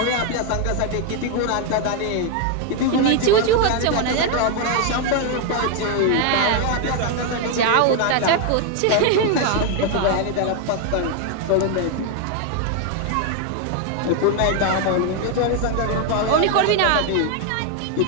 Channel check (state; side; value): different; both; correlation 0.01